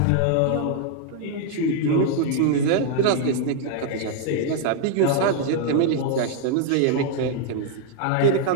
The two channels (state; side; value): different; both; correlation 0.00